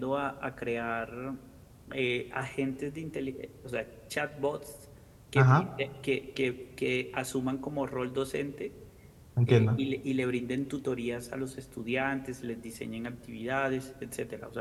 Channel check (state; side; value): identical; both; correlation 1.00